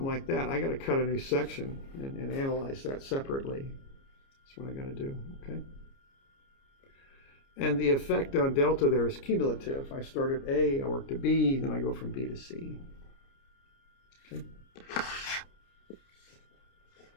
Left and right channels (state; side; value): late; right; 29 ms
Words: like that, I got to cut a new section and analyze that separately. That's what I got to do, okay? And the effect on delta there is cumulative. I start at A, I work to B, then I go from B to C. Okay.